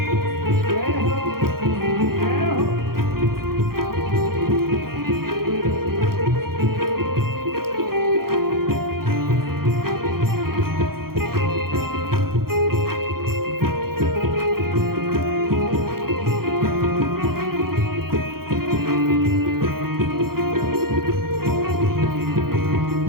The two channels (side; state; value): left; late; 0.93 ms